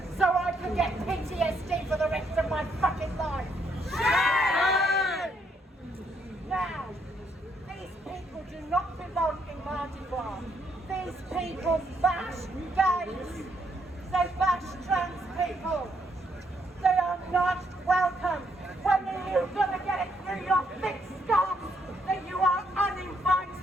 so I could get PTSD for the rest of my fucking life. Shame! Now, these people do not belong in Mardi Gras. These people bash gays. They bash trans people. They are not welcome. When are you going to get it through your thick skull that you are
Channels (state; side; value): normal; both; correlation 0.73